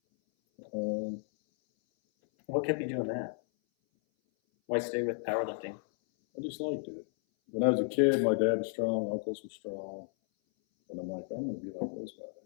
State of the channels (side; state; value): right; silent; 56 dB below the other